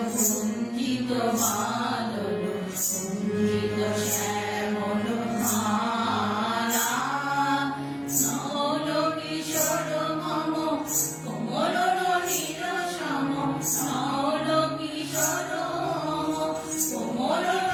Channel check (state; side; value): identical; both; correlation 1.00